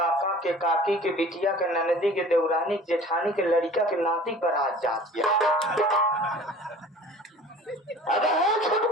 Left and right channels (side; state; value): both; normal; correlation 0.45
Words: के काकी के बिटिया के ननदी के देवरानी के जेठानी के लड़का के नाती पर आज जाती अरे है